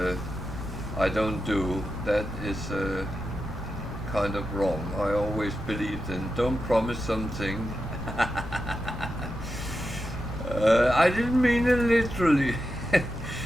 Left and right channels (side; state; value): left; noise; rumble, 11 dB below the sound